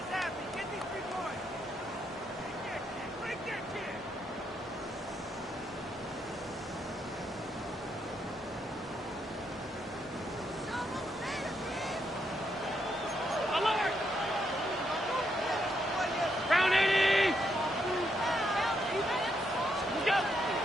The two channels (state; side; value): normal; both; correlation 0.78